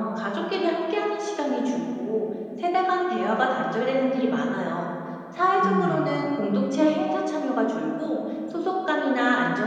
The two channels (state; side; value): identical; both; correlation 1.00